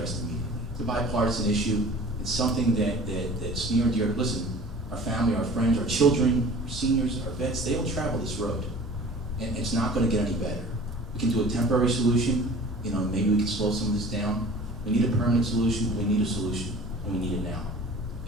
immediately. It's a bipartisan issue. It's something that's near and dear. Listen, our family, our friends, our children, our seniors, our vets, they all travel this road. And it's not going to get any better. We can do a temporary solution. Maybe we can slow some of this down. We need a permanent solution. We need a solution, and we need it now.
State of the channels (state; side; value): normal; both; correlation 0.44